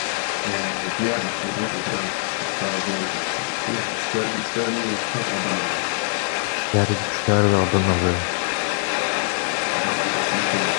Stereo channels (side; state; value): right; silent; 63 dB below the other